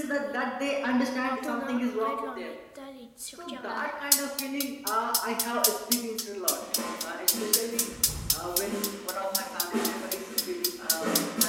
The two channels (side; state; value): both; identical; correlation 1.00